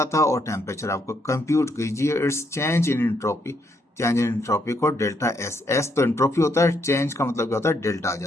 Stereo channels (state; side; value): normal; both; correlation 0.75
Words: था और टेम्परेचर आपको कंप्यूट कीजिए। It's change in entropy, change in entropy को डेल्टा एस, एस तो एंट्रोपी होता है, चेंज का मतलब क्या होता है, डेल्टा आ